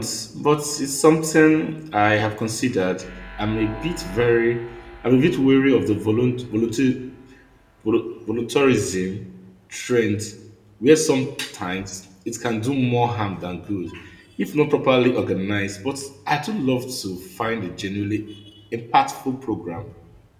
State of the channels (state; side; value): identical; both; correlation 1.00